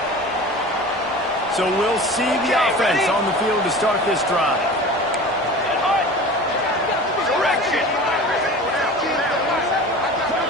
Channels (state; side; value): normal; both; correlation 0.37